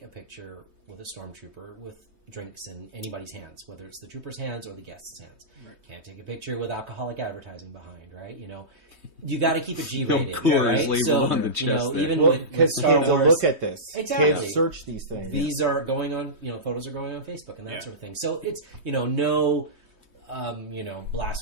a picture with a stormtrooper with drinks in anybody's hands, whether it's the trooper's hands or the guest's hands. Right. Can't take a picture with alcoholic advertising behind, right? You got to keep it G-rated, right? So, on the chest even with Star Wars, look at this. Exactly. Kids search these things. These are going on, photos are going on Facebook and that sort of thing. So it's, no,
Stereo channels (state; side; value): late; left; 3.2 ms